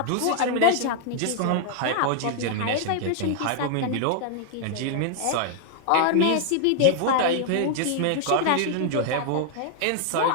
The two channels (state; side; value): different; both; correlation 0.00